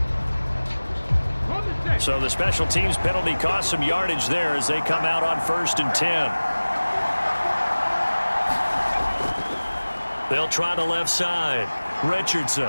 So the special teams penalty cost some yardage there as they come out on 1st and 10. They'll try the left side.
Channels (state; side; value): inverted; both; correlation -1.00